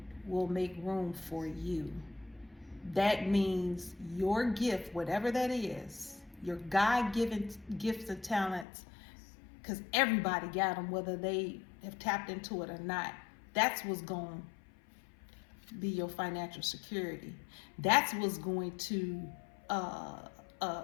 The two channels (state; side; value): drops out; right; at 8.7 s